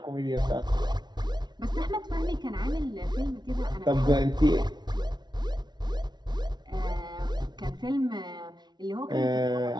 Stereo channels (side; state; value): left; late; 0.20 ms